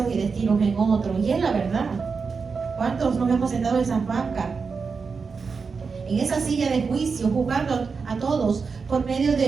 y destinos en otros. Y es la verdad. ¿Cuántos nos hemos sentado en esas bancas, en esa silla de juicio, juzgando a todos por medio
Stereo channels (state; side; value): quieter; left; 5.1 dB